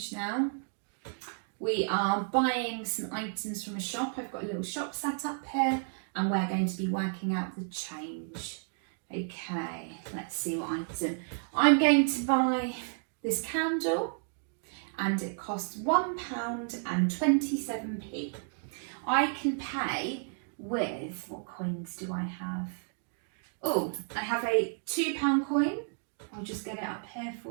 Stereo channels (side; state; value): left; silent; 56 dB below the other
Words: now. We are buying some items from a shop. I've got a little shop set up here and we're going to be working out the change. Okay, let's see what item. I'm going to buy this candle and it costs £1.27. I can pay with, what coins do I have? Oh, I have a £2 coin. I'll just get it up here